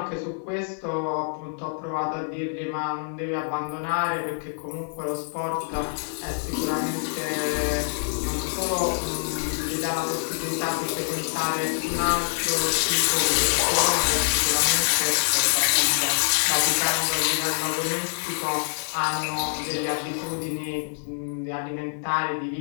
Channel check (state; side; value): silent; right; digital silence